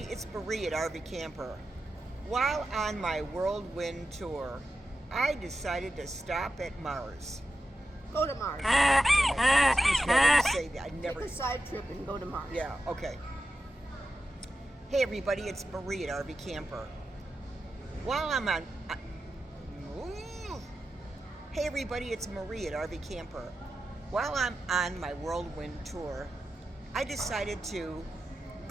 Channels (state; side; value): normal; both; correlation 0.91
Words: it's Marie at RV Camper. While on my whirlwind tour, I decided to stop at Mars. Go to Mars. Excuse me, I didn't say that. I never. Take a side trip and go to Mars. Yeah, okay. Hey everybody, it's Marie at RV Camper. While I'm on. Hey everybody, it's Marie at RV Camper. While I'm on my whirlwind tour, I decided to